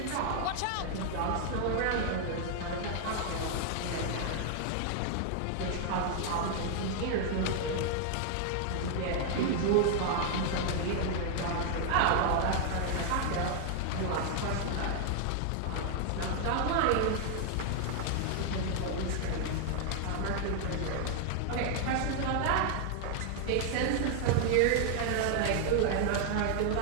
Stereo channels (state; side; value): different; both; correlation 0.00